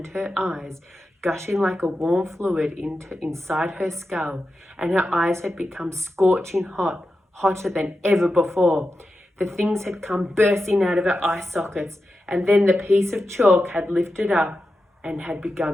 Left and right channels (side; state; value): both; normal; correlation 0.91